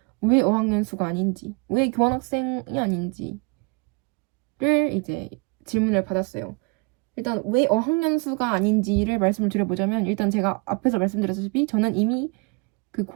왜 어학연수가 아닌지, 왜 교환학생이 아닌지를 이제 질문을 받았어요. 일단 왜 어학연수가 아닌지를 말씀을 드려보자면 일단 제가 앞에서 말씀드렸다시피 저는 이미 그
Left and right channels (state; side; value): quieter; left; 31.3 dB